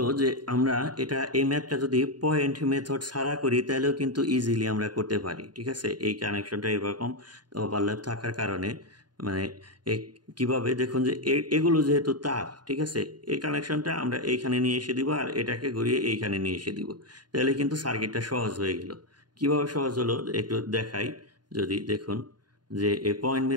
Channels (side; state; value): left; late; 0.70 ms